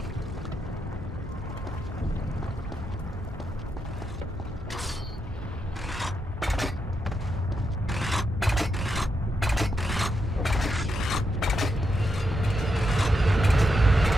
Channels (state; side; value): normal; both; correlation 0.83